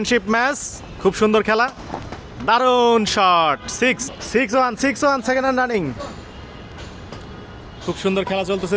ম্যাচ, খুব সুন্দর খেলা, দারুণ শট। 6-1 সেকেন্ড হ্যান্ড রানিং, খুব সুন্দর খেলা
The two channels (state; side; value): identical; both; correlation 1.00